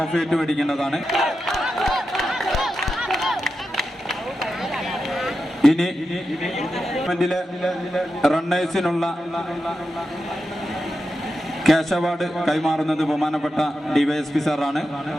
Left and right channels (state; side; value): normal; both; correlation 0.89